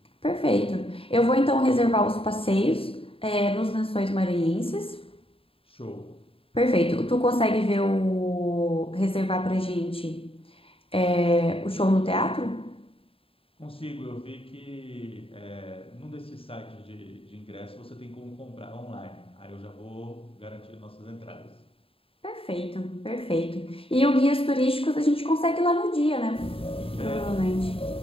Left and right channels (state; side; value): late; right; 0.27 ms